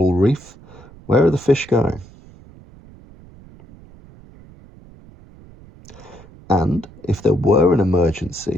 reef, where are the fish going? And if there were an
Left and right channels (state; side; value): noise; right; rumble, 22 dB below the sound